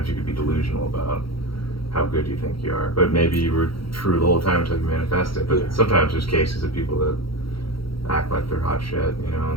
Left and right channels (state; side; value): late; right; 0.74 ms